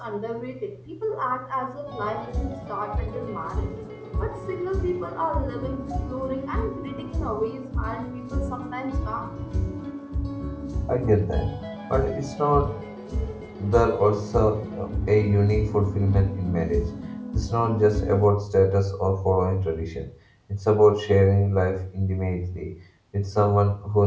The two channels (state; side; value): identical; both; correlation 1.00